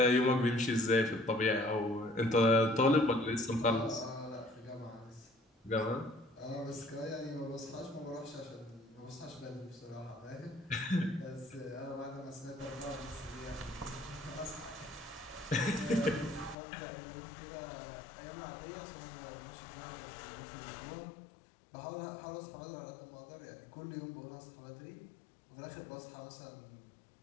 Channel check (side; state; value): right; drops out; at 16.6 s